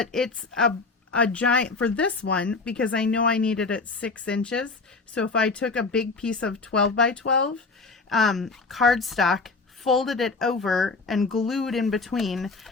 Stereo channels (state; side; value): quieter; right; 4.0 dB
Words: it's a giant for this one because I know I needed it 6 inches. So if I took a big piece of 12 by 12 cardstock, folded it over and glued in between